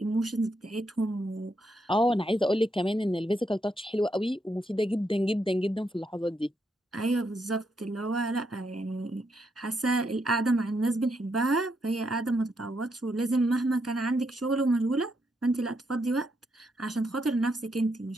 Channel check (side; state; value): both; normal; correlation 0.79